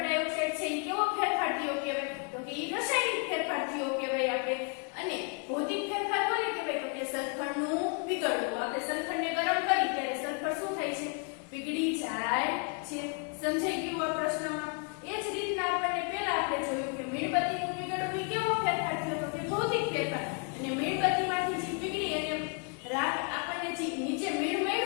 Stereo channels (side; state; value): right; quieter; 38.5 dB